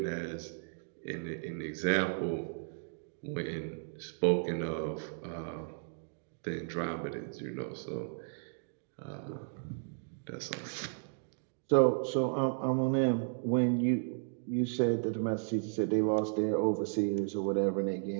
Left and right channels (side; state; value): left; silent; digital silence